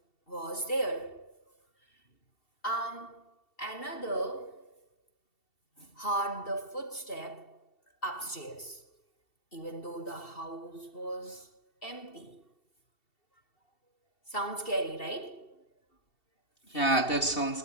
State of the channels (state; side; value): late; right; 2.7 ms